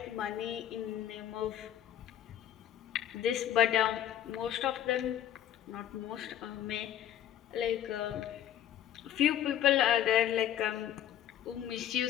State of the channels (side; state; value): right; quieter; 10.8 dB